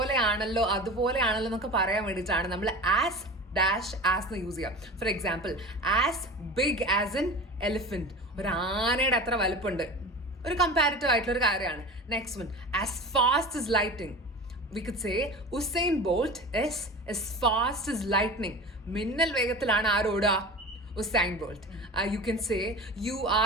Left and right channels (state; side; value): normal; both; correlation 0.34